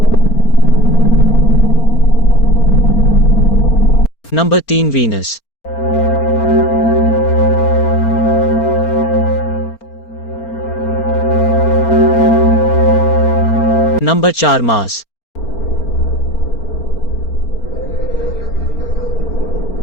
Number 3 Venus. Number 4 Mars.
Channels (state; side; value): late; right; 4.4 ms